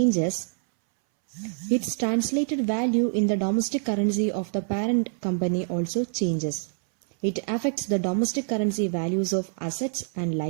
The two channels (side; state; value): left; silent; 61 dB below the other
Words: its translated value in the domestic currency of the parent company also changes. It affects the domestic currency values of assets and